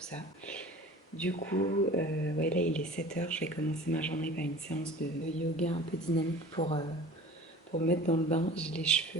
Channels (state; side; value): normal; both; correlation 0.42